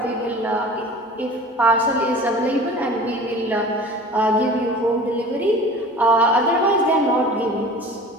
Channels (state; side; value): normal; both; correlation 0.40